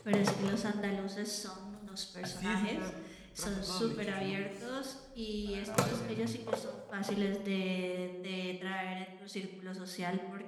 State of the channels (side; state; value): both; identical; correlation 1.00